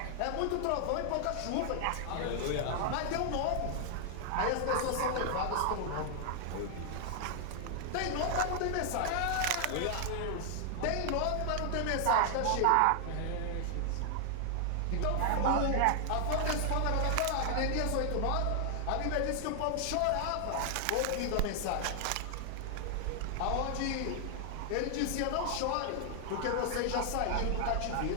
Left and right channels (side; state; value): both; different; correlation 0.00